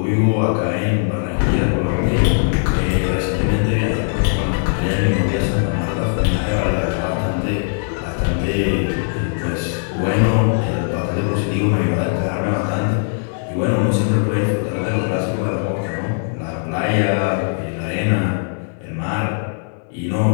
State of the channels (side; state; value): right; silent; digital silence